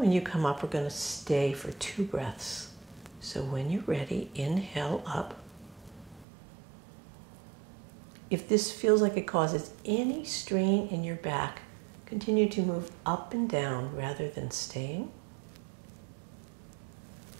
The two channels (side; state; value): left; drops out; at 6.2 s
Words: you come up, we're going to stay for 2 breaths. So when you're ready, inhale up. If this feels like it causes any strain in your back, continue to move up and down rather than staying.